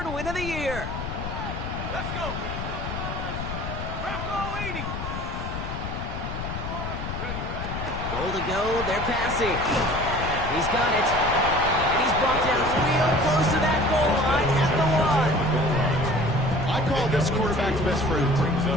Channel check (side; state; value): left; noise; rumble, 6 dB below the sound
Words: win of the year. Let's go. Bronco 80. Goal to go, they're passing. He's got it. And he's brought down real close to that goal line at the 1. I call this quarterback's best friend.